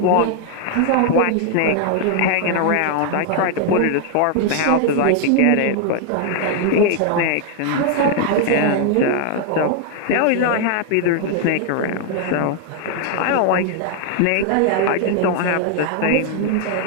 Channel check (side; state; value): both; different; correlation 0.00